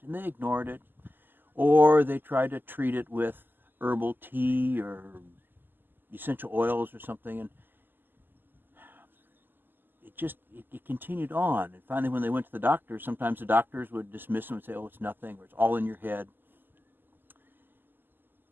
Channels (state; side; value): late; left; 0.093 ms